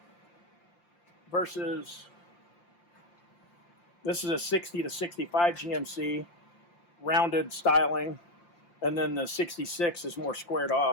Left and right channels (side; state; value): right; late; 5.8 ms